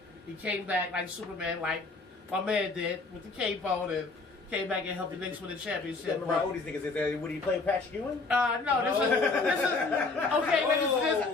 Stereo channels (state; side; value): quieter; right; 3.8 dB